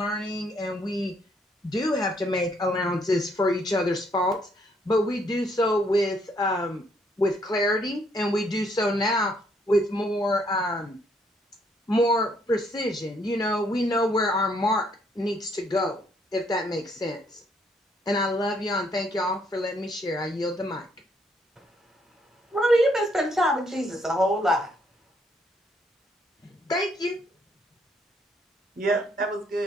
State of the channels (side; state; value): both; normal; correlation 0.70